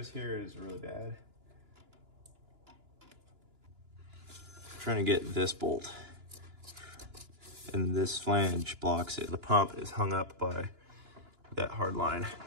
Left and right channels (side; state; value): left; late; 2.9 ms